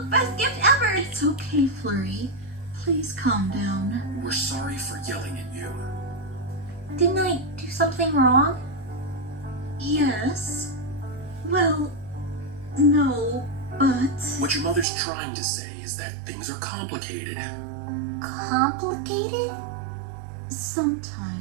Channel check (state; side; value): drops out; left; at 14.9 s